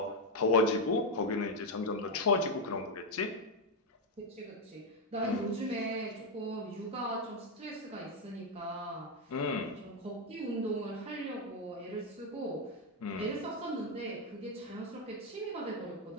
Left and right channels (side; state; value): both; normal; correlation 0.03